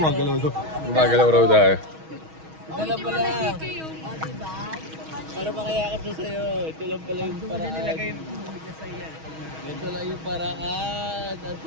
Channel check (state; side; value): late; left; 6.3 ms